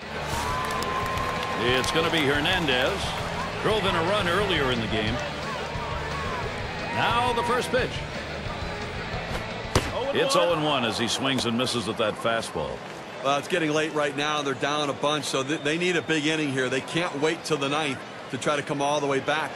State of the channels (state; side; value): identical; both; correlation 1.00